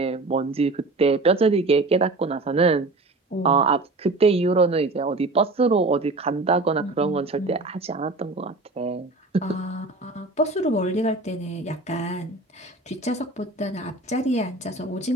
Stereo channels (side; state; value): left; quieter; 3.1 dB